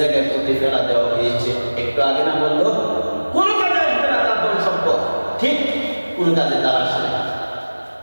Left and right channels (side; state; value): both; inverted; correlation -1.00